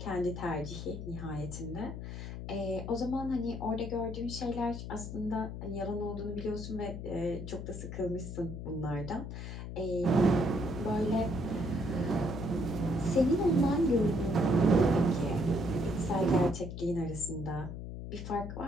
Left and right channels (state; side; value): noise; left; hum, 7 dB below the sound